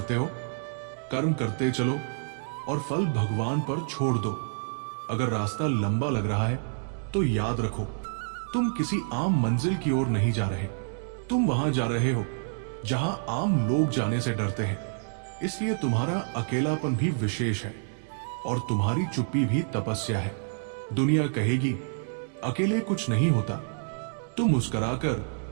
हो? कर्म करते चलो और फल भगवान पर छोड़ दो। अगर रास्ता लंबा लग रहा है तो याद रखो, तुम किसी आम मंजिल की ओर नहीं जा रहे। तुम वहां जा रहे हो जहां आम लोग जाने से डरते हैं। इसलिए तुम्हारा अकेलापन भी विशेष है और तुम्हारी चुप्पी भी तपस्या है। दुनिया कहेगी अकेले कुछ नहीं होता। तुम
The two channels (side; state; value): left; silent; digital silence